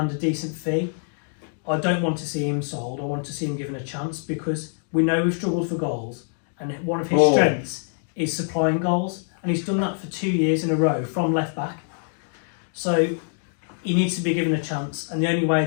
a decent fee. I don't want to see him sold, I want to see him given a chance, because we know we've struggled for goals, and one of his strengths is supplying goals, and he's done that for 2 years in a row from left back. So he needs to be given a chance, and the only way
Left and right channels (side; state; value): right; silent; 62 dB below the other